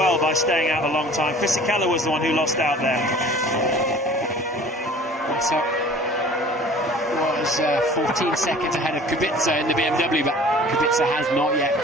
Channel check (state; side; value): normal; both; correlation 0.47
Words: by staying out a long time. Fisichella was the one who lost out there. So was 14 seconds ahead of Kubica in the BMW, but Kubica has not yet